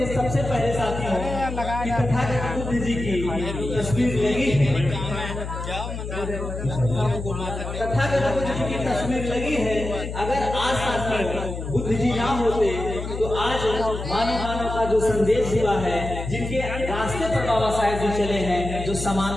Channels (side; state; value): left; noise; hum, 7 dB below the sound